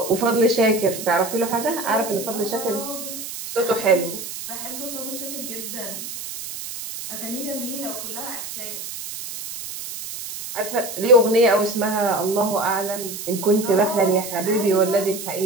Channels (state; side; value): noise; right; hiss, 8 dB below the sound